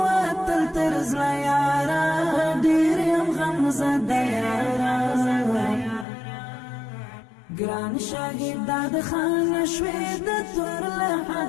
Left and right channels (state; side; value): drops out; right; at 6.1 s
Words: ترزلا یارا دیریم غمزد یارا گران شاهد داد خان شوید تور